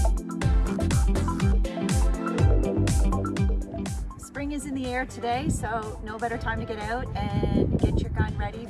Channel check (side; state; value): both; identical; correlation 1.00